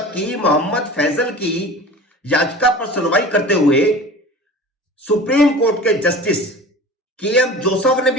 कि मोहम्मद फैजल की याचिका पर सुनवाई करते हुए सुप्रीम कोर्ट के जस्टिस के.एम. जोसेफ ने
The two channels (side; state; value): both; normal; correlation 0.38